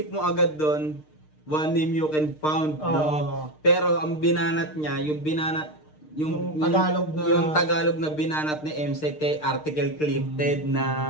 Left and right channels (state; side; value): late; right; 6.6 ms